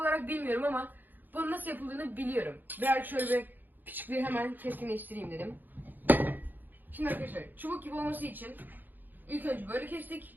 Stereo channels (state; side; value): late; left; 0.088 ms